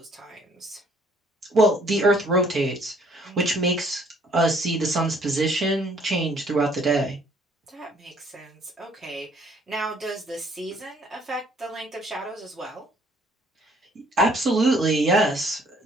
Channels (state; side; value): normal; both; correlation 0.61